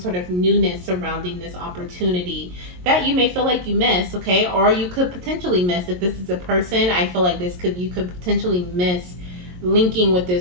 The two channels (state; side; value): late; left; 22 ms